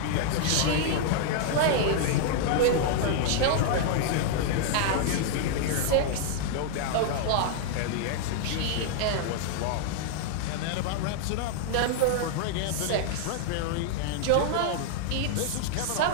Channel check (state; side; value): different; both; correlation -0.01